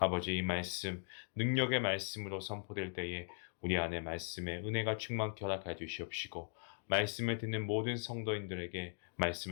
이 말씀, 능력의 말씀으로 선포될 때에 우리 안에 말씀의 은혜가 충만케 허락하여 주시옵시고, 말씀을 듣는 모든 성도인들에게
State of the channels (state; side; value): silent; right; 52 dB below the other